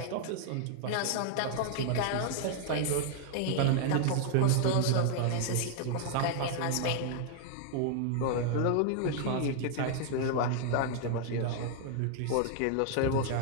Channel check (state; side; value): different; both; correlation 0.00